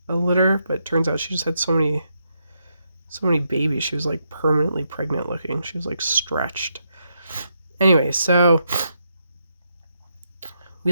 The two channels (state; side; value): inverted; both; correlation -0.81